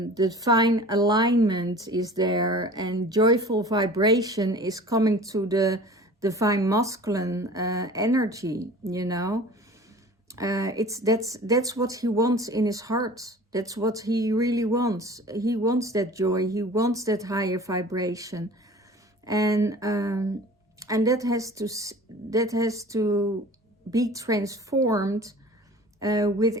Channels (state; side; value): normal; both; correlation 0.42